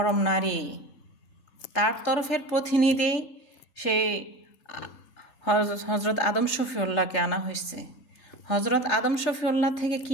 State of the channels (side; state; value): right; late; 3.3 ms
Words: নারী, তার তরফের প্রতিনিধি সেই হজরত আদম শফিউল্লাহকে আনা হয়েছে। হজরত আদম শফিউল্লাহ থেকে